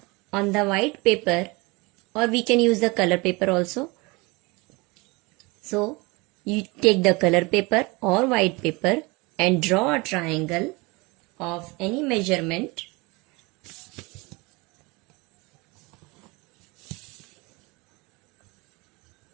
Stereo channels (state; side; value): quieter; left; 25.7 dB